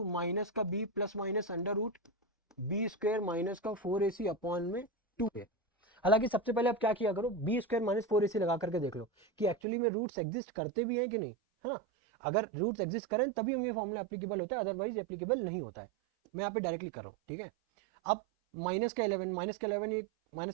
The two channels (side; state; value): left; drops out; at 9.6 s